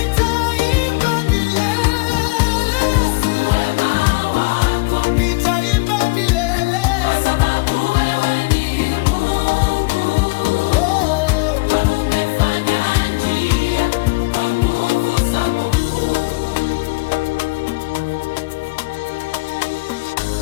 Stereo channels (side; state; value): right; quieter; 25.7 dB